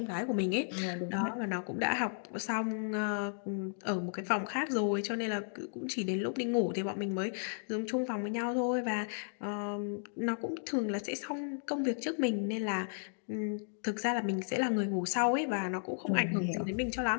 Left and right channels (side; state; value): right; silent; digital silence